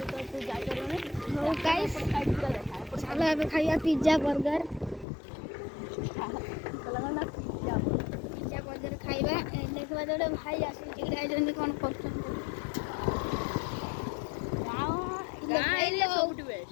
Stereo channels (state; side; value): drops out; right; at 5.1 s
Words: चलो ଏବେ ଖାଇବା ପିଜ୍ଜା ବର୍ଗର। ପିଜ୍ଜା ବର୍ଗର ଖାଇବା ଦେଖିବା ଗୋଟେ ଭାଇ ଆସିଛି ଯାଇଛନ୍ତି କ'ଣ କରୁଛନ୍ତି।